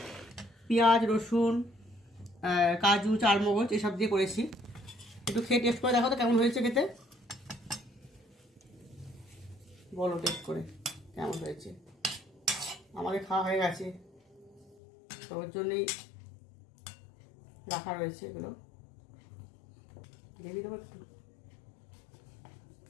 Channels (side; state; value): right; drops out; at 14.8 s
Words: পেঁয়াজ রসুন কাজু চারমগজ এসব দিয়ে করেছি। একটু খেয়ে টেস্ট করে দেখো তো কেমন হয়েছে খেতে, বলো টেস্ট করে কেমন হয়েছে। আমাকে খাওয়া হয়ে গেছে, তো ওর জন্যই রাখা রয়েছে এগুলো। দেখি দেবো একটু,